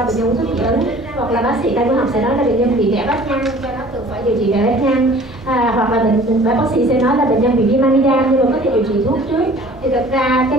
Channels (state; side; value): normal; both; correlation 0.49